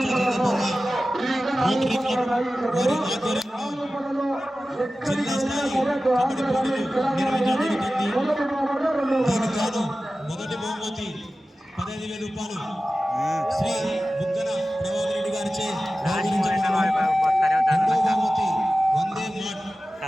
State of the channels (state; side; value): normal; both; correlation 0.95